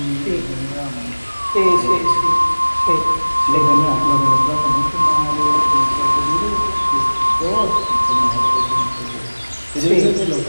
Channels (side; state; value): both; inverted; correlation -1.00